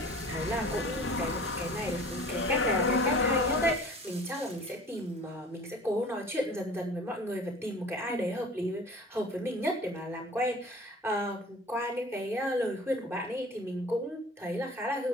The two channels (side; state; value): both; normal; correlation 0.44